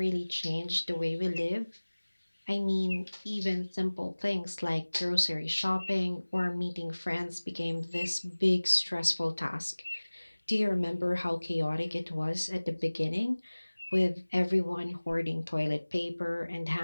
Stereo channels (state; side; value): inverted; both; correlation -1.00